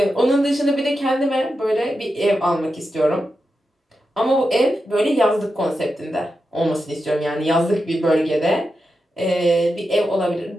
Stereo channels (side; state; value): both; normal; correlation 0.89